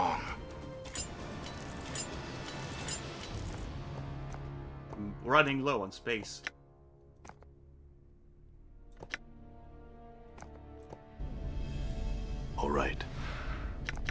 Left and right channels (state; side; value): identical; both; correlation 1.00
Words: I'm running low on space. All right.